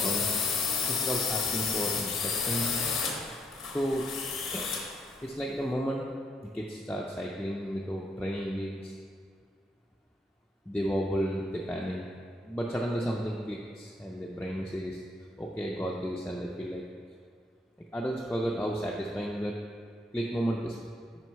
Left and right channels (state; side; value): normal; both; correlation 0.72